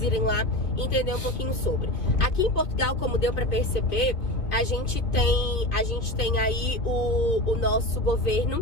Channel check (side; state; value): right; late; 2.5 ms